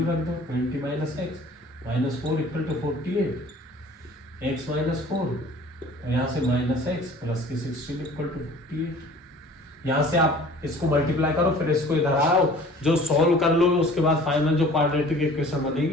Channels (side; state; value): both; normal; correlation 0.48